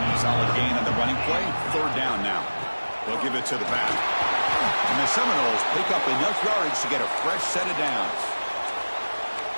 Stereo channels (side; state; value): both; inverted; correlation -1.00